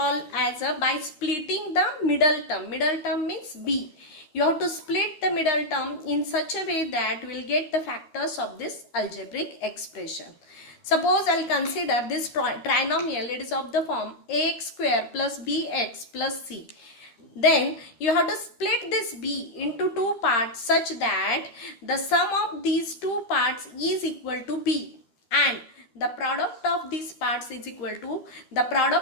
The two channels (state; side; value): late; right; 13 ms